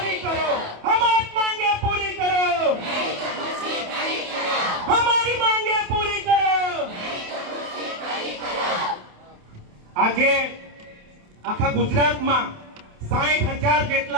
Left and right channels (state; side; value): late; left; 28 ms